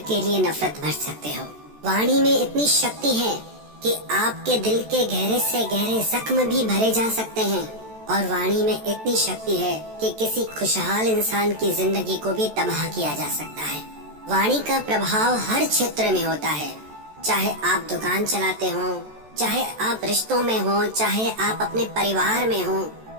के लिए नफरत भर सकते हो। वाणी में इतनी शक्ति है कि आपके दिल के गहरे से गहरे जख्म भी भरे जा सकते हैं और वाणी में इतनी शक्ति है कि किसी खुशहाल इंसान की जिंदगी को भी तबाह किया जा सकता है। वाणी का प्रभाव हर क्षेत्र में होता है, चाहे आप दुकान चलाते हो, चाहे आप रिश्तों में हो, चाहे आप अपने परिवार में हो,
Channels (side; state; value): left; late; 14 ms